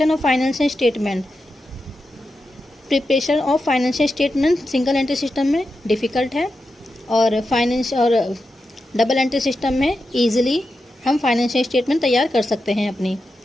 of financial statement single entry system में डिफ़िकल्ट है और डबल एंट्री सिस्टम में ईजिली हम फाइनेंशियल स्टेटमेंट तैयार कर सकते हैं अपनी।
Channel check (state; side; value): normal; both; correlation 0.89